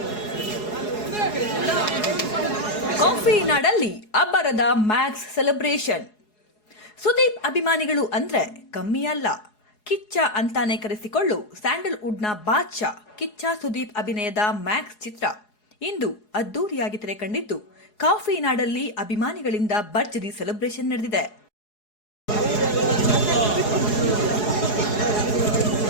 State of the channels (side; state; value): right; late; 4.8 ms